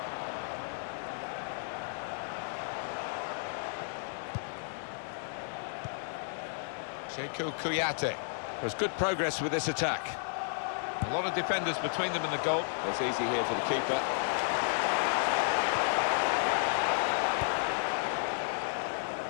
Sheku Kouyaté. There's good progress with this attack. A lot of defenders between them and the goal. It's easy here for the keeper.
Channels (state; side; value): silent; right; digital silence